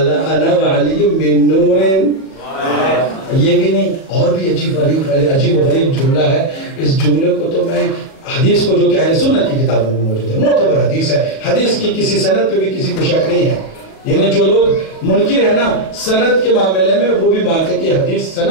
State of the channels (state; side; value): late; right; 37 ms